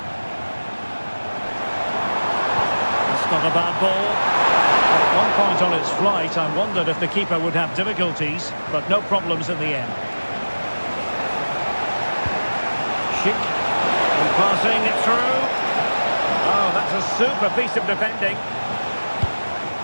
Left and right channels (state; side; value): inverted; both; correlation -1.00